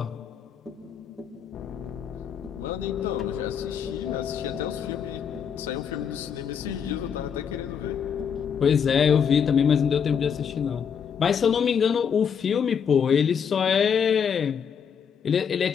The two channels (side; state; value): right; quieter; 7.3 dB